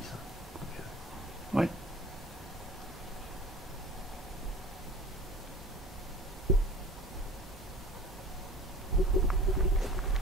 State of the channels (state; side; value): normal; both; correlation 0.42